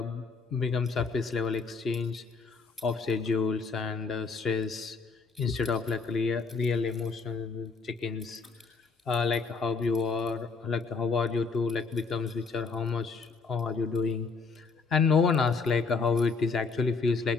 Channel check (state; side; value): quieter; right; 4.7 dB